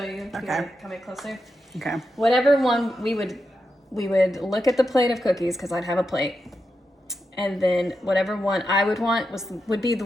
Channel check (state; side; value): normal; both; correlation 0.87